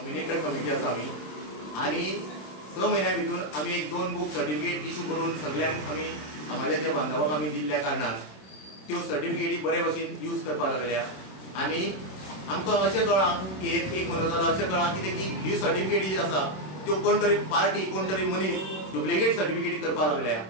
कमिटी आसा आमी, आणि 6 महिन्या भितर आमी एक 2 बुक सर्टिफिकेट इशू करून सगळ्यांक आमी समाजाच्या बांधवांक आमी दिल्ल्या कारणान त्यो सर्टिफिकेटी बरे भशेन यूज करपाक लागल्या। आणि आमकां अशें कळ्ळां की एक म्हयनो जालो अशें कळ्ळां कितें की ही सर्टिफिकेट जी आसा त्यो कोण तरी पार्टी कोण तरी मनीस डुप्लिकेट सर्टिफिकेट करपाक लागल्या,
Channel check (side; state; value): right; late; 26 ms